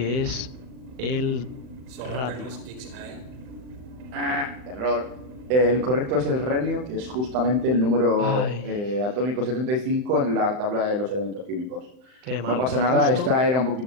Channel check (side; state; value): left; late; 39 ms